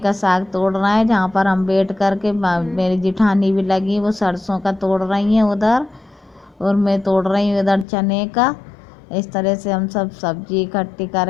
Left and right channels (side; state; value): right; drops out; at 7.9 s